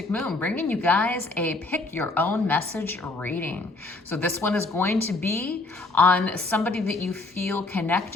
Moon, bringing you guys a pick your own message reading. So this one is going to be on somebody that you feel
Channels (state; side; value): quieter; right; 3.3 dB